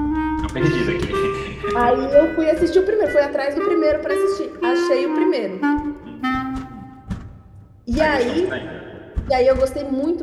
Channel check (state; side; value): identical; both; correlation 1.00